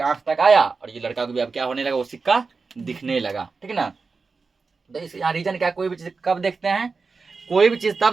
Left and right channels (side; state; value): left; quieter; 4.5 dB